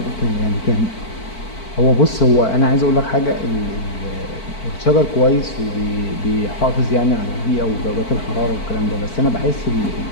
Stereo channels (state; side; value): late; right; 4.5 ms